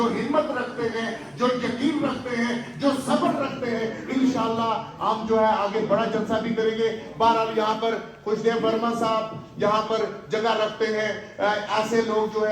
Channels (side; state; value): both; identical; correlation 1.00